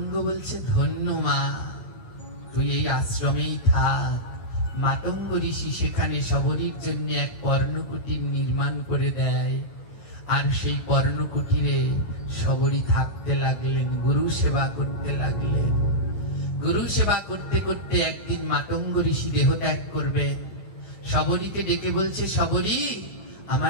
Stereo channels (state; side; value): late; right; 9.6 ms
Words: বলছে, ধন্য মা, তুই এই আশ্রমেই থাক। মাতঙ্গ ঋষি সেখানে শবরীর জন্য এক পর্ণকুটির নির্মাণ করে দেয়, আর সেই পর্ণকুটিরে শবরী থাকতে লাগলেন, গুরু সেবা করতে লাগলেন। গুরু সেবা করতে করতে একদিন মাতঙ্গ ঋষি দেহ ত্যাগ করবেন। শবরীকে ডেকে বলছে, শবরী